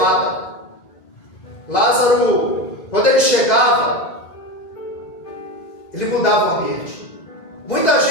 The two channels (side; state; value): right; late; 2.0 ms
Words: Lázaro, quando ele chegava, ele mudava o ambiente. Muita